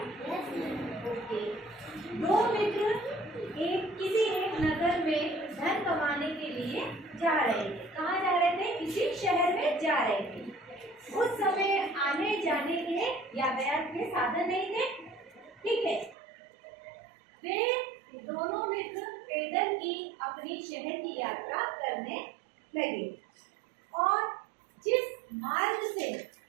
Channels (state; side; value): drops out; left; at 16.2 s